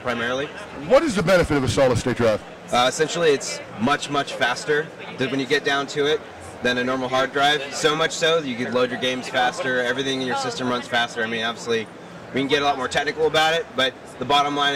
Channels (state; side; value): identical; both; correlation 1.00